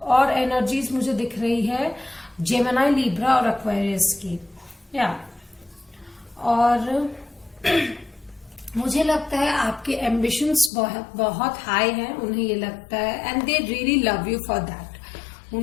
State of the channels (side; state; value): right; drops out; at 10.7 s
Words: एनर्जीज मुझे दिख रही है जेमिनी, लिब्रा और एक्वेरियस की। या और मुझे लगता है आपके एम्बिशंस बहुत हाई हैं, उन्हें ये लगता है, and they really love you for that.